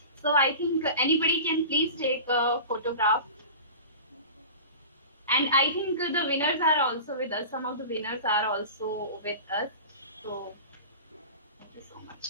so I think anybody can please take a photograph. And I think the winners are also with us. Some of the winners are also with us. So thank you so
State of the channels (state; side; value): inverted; both; correlation -0.34